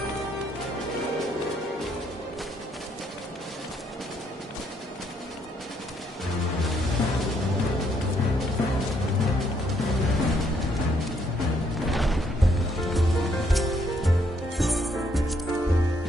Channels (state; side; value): normal; both; correlation 0.71